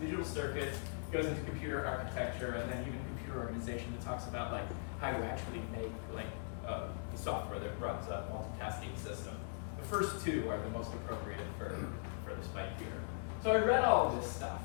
circuits, goes into computer architecture, and then even computer organization that talks about like how you actually make like the software that runs a multitasking system. The first 2 are the most appropriate for the Spikeputor. So I read all of this stuff.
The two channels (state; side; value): silent; right; digital silence